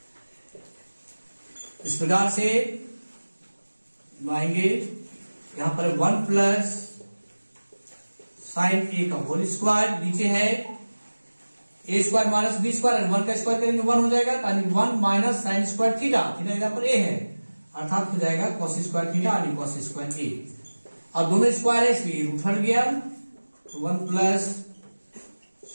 इस प्रकार से आएंगे यहां पर 1 प्लस साइन ए का होल स्क्वायर, नीचे है ए स्क्वायर माइनस बी स्क्वायर, 1 का स्क्वायर करेंगे 1 हो जाएगा, यानी 1 minus sign square theta, theta यहां पर ए है, अर्थात हो जाएगा कॉस स्क्वायर थीटा यानी कॉस स्क्वायर ए। अब दोनों स्क्वायर है इसलिए रूट हट गया, तो 1 plus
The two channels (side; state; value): both; inverted; correlation -1.00